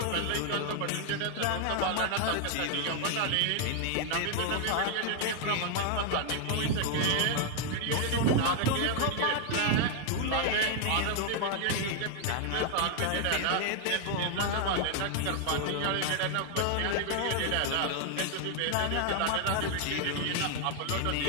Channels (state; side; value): different; both; correlation 0.00